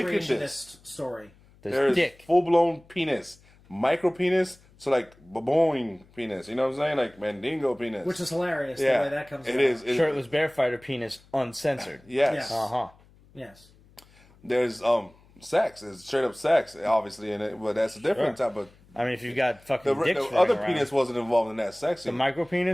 in this. creationist story. There's dick. full-blown penis, micro penis, so like baboing penis. You know what I'm saying? Like Mandingo penis. Which is hilarious yeah, the way that comes it out. is. Shirtless Bear-Fighter penis uncensored. Yes. Yeah. Uh-huh. Yes. There's sex. It's straight up sex, obviously, in it, but that's a different Sure. type of. I mean, if you've got fucking The dicks other running penis around. wasn't involved in that sex The scene. micro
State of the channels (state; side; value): noise; left; hum, 28 dB below the sound